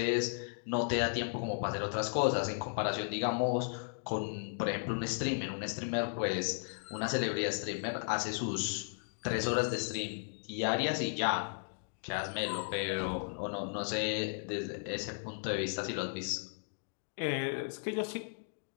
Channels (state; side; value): silent; right; digital silence